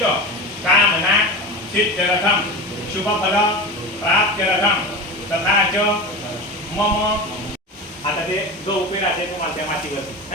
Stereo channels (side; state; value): both; normal; correlation 0.27